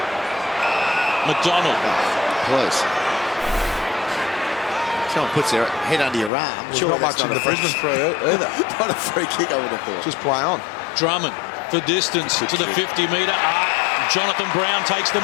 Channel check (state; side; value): drops out; right; at 6.3 s